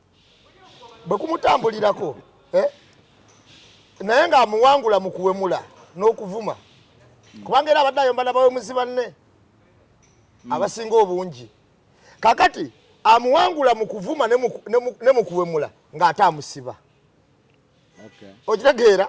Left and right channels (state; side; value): identical; both; correlation 1.00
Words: bwe kumutambulirako naye ng'amuwangula mu kuwemula n'okuvuma kubanga era abadde ayomba n'abawemuzi banne abasinga obungi kakati amuwangula mu kuvuma ne mu kuwemula ng'ate amusiba okitegeera